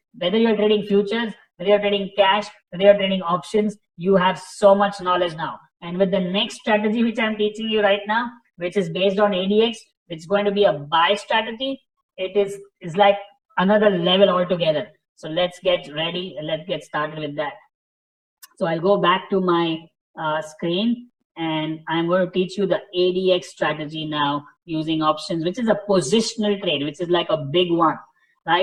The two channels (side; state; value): both; identical; correlation 1.00